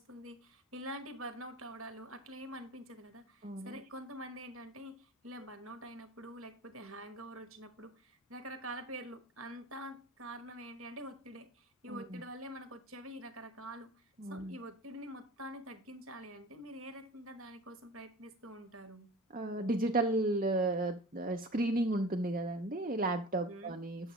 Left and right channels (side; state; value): both; normal; correlation 0.38